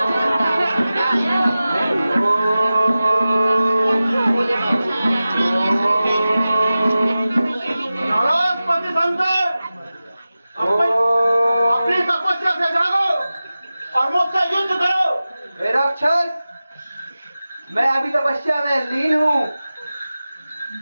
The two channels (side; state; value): both; inverted; correlation -0.95